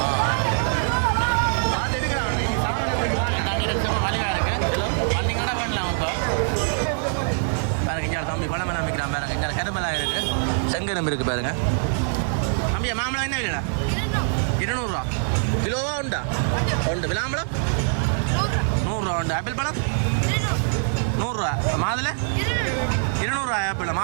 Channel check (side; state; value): left; silent; 63 dB below the other